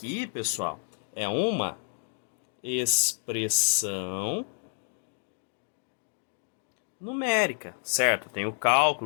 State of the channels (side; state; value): right; silent; digital silence